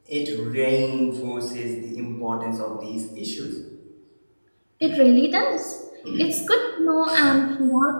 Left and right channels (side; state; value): both; inverted; correlation -1.00